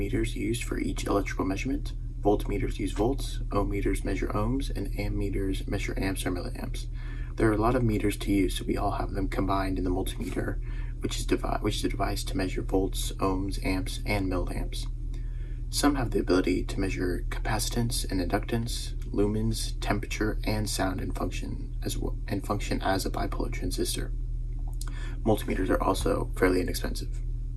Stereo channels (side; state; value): both; identical; correlation 1.00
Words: used for each electrical measurement. Voltmeters use volts, ohm meters measure ohms, and ammeters measure amps or milliamps. There are a lot of meters to use, so we all have them combined in the multimeter, which is a device to measure volts, ohms, amps, and milliamps. Some have the ability to measure capacitance and inductance, lumens, temperature, and sound and function as a bipolar transistor. Multimeters are also fairly inexpensive.